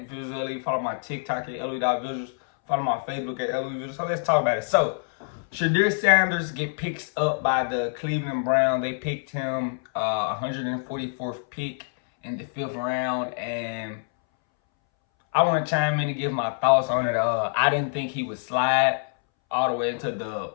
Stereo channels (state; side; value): silent; right; 61 dB below the other